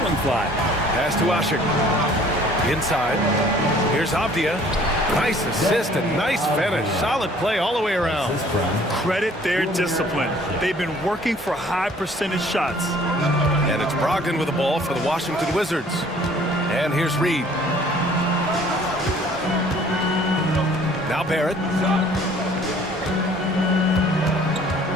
one fly. Pass to Ashik. Inside. Here's Avdia. Nice assist and nice finish. Solid play all the way around. Credit their discipline. They've been working for high percentage shots. And it's Brogdon with the ball for the Washington Wizards. And here's Reed. Now Barrett.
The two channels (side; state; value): both; normal; correlation 0.55